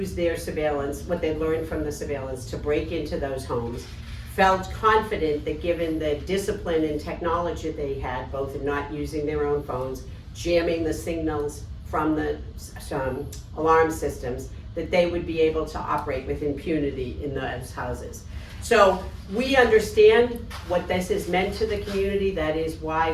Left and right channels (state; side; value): identical; both; correlation 1.00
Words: their surveillance, what they learned from the surveillance, to break into those homes. Felt confident that given the discipline and technology they had, both in not using their own phones, jamming the signals from the alarm systems, that they would be able to operate with impunity in those houses. So we understand what this has meant to the community. That is why